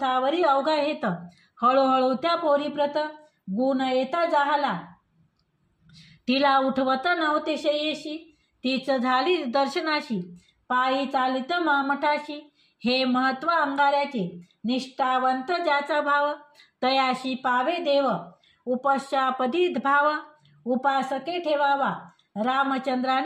अवघा हेत, हळूहळू त्या पोरीप्रत, गुण येता जाहला, तिला उठवत नव्हते शयेशी, तीच झाली दर्शनाशी, पायी चालित मठाशी, हे महत्व अंगाऱ्याचे, निष्ठावंत ज्याचा भाव, तयाशी पावे देव, उपशापदी भाव, उपासके ठेवावा,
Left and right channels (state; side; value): identical; both; correlation 1.00